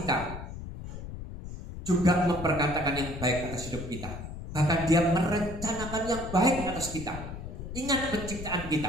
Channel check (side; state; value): left; noise; rumble, 9 dB below the sound